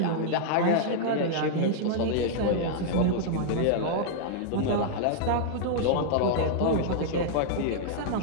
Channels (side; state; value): both; different; correlation -0.01